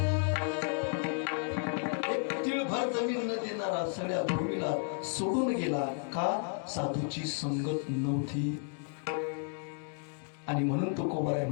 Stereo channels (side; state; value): right; silent; 56 dB below the other